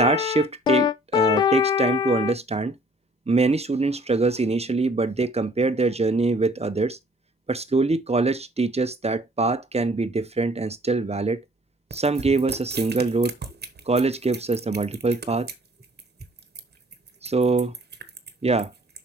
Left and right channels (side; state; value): both; normal; correlation 0.57